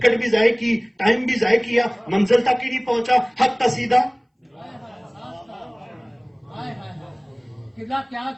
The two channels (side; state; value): both; identical; correlation 1.00